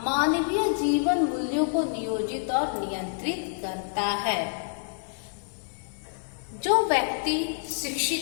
मानवीय जीवन मूल्यों को नियोजित और नियंत्रित करता है। जो व्यक्ति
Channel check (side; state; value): right; silent; 60 dB below the other